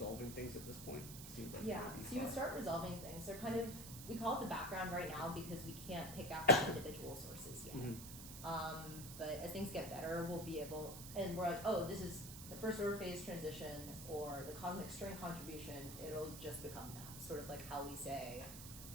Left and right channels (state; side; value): noise; right; hiss, 10 dB below the sound